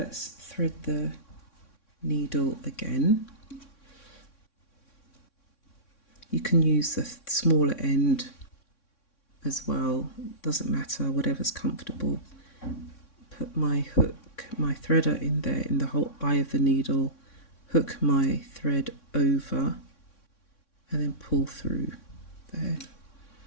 thread the needle again. You can use the smaller end as well, doesn't matter, whatever's comfortable. Put my hook, my threader in there in the whole eye of the needle, hook my thread over and then pull through there.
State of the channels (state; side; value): late; right; 3.6 ms